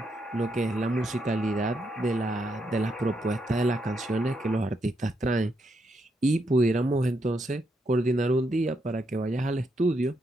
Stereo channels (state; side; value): normal; both; correlation 0.79